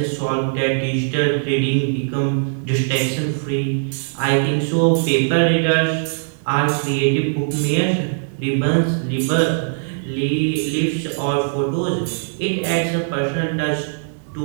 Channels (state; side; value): silent; left; digital silence